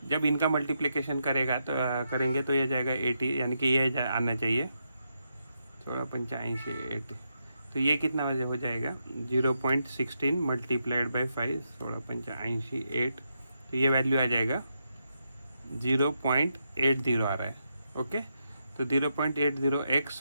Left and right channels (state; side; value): inverted; both; correlation -0.82